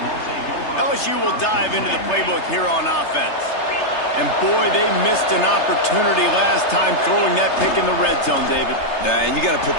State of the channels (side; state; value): right; late; 3.3 ms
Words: LSU will dive into the playbook here on offense. And boy, they missed an opportunity last time throwing that pick in the red zone, David. And you got to put